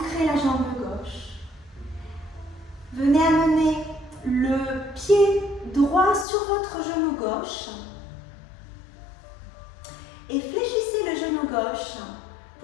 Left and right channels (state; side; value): drops out; right; at 6.2 s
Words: la jambe gauche. Venez amener le pied droit sur votre genou gauche et fléchissez le genou gauche